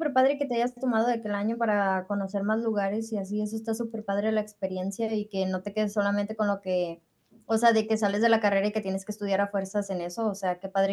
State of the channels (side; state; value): both; identical; correlation 1.00